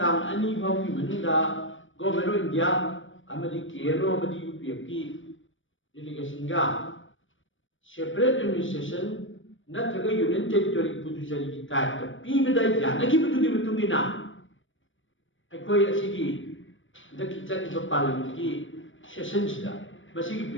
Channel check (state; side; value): late; right; 0.56 ms